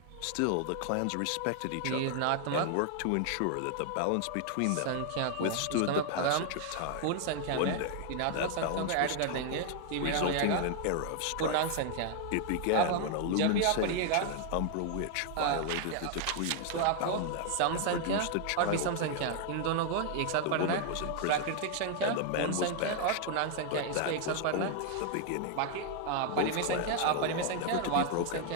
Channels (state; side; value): different; both; correlation 0.00